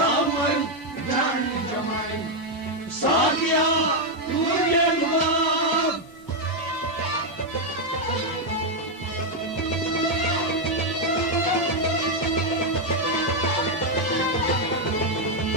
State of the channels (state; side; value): normal; both; correlation 0.02